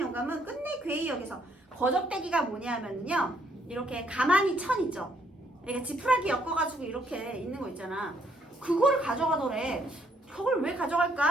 끝내 괴히 여기서 거적대기가 뭐냐면요 이렇게 가만히 천 있죠. 그러니까 지푸라기 엮어가지고 이렇게 있는 거 있잖아. 그거를 가져가더래. 저걸 왜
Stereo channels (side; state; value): both; normal; correlation 0.69